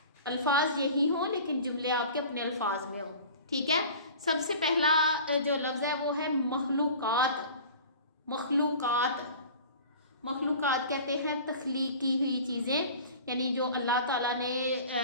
الفاظ یہی ہوں لیکن جملے آپ کے اپنے الفاظ میں ہوں، ٹھیک ہے؟ سب سے پہلا جو لفظ ہے وہ ہے مخلوقات۔ مخلوقات کہتے ہیں تخلیق کی ہوئی چیزیں، یعنی جو اللہ تعالیٰ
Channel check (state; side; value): inverted; both; correlation -0.41